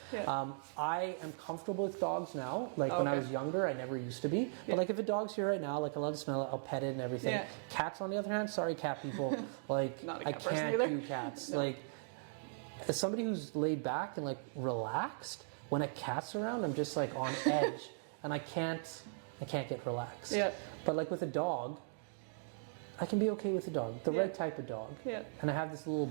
Yeah. I am comfortable with dogs now. Like when I Okay. was younger, I never used to be. But like, if a dog's here right now, like I love to smell it. I'll pet it and everything. Yeah. Cats, on the other hand, sorry, cat people. Like, Not a I cat person can't either. do cats. No. Like, as somebody who's laid back and like relaxed, when a cat's around, I'm just like on edge, and I can't get relaxed. Yeah. But like with a dog, I can be okay with a dog, the right type of dog. Yeah. And I have this little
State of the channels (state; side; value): silent; left; digital silence